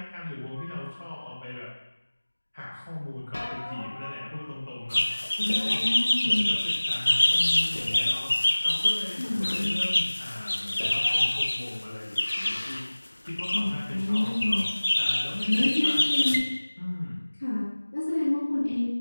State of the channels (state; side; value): inverted; both; correlation -1.00